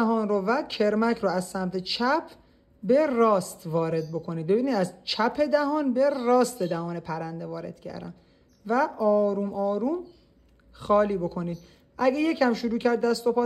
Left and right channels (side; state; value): both; identical; correlation 1.00